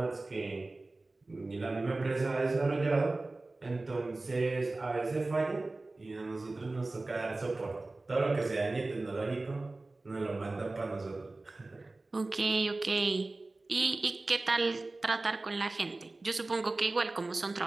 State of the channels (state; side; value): quieter; left; 3.1 dB